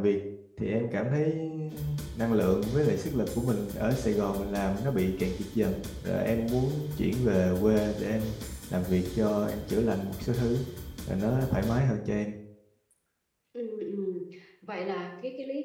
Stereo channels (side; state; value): both; identical; correlation 1.00